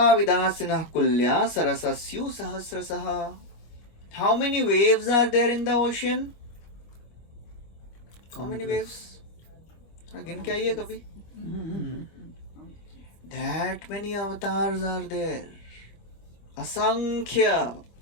विदासिनः कुल्या सरसस्यु सहस्रशः. How many waves are there in the ocean? How many waves? गिन के आइए कभी. That many avatars are there. Asankhya.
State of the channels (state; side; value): late; right; 25 ms